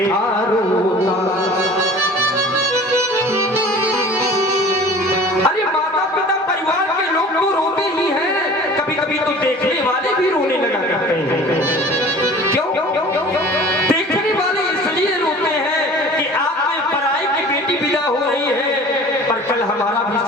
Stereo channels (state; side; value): normal; both; correlation 0.43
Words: कल हमारा भी